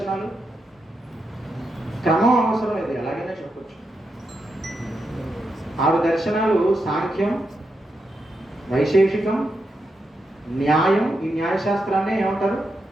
క్రమం అవసరం లేదు, ఎలాగైనా చెప్పచ్చు. 6 దర్శనాలు: సాంఖ్యం, వైశేషికం, న్యాయం. ఈ న్యాయశాస్త్రాన్ని ఏమంటారు?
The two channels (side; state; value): both; normal; correlation 0.85